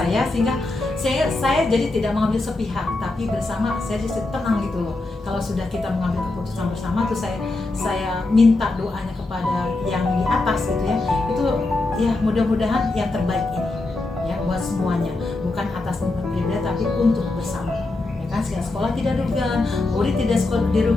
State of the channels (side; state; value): right; quieter; 3.0 dB